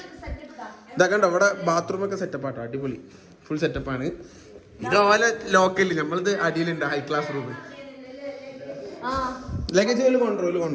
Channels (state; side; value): identical; both; correlation 1.00